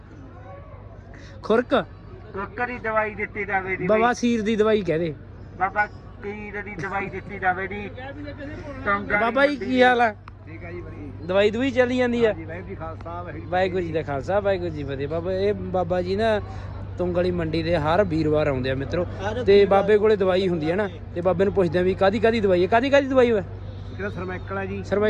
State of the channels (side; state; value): both; identical; correlation 1.00